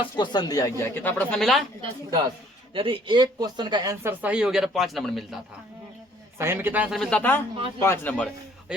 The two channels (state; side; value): normal; both; correlation 0.59